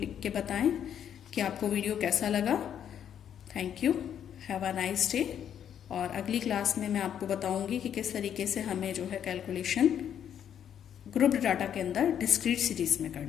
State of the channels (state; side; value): quieter; right; 9.3 dB